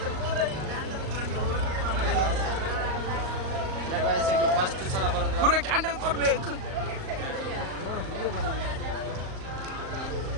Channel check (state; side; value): late; left; 38 ms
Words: ಫಸ್ಟ್ ಸಲ ಬರೋದು ಪೂರ ಕ್ಯಾಂಡಲ್ ಕೊಡ್ಬೇಕು